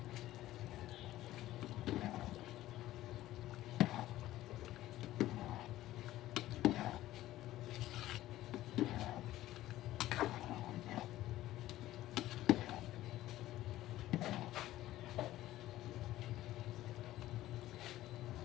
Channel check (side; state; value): right; quieter; 15.0 dB